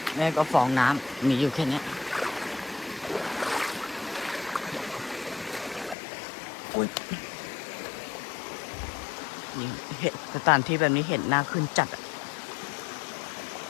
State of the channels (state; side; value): drops out; right; at 6.0 s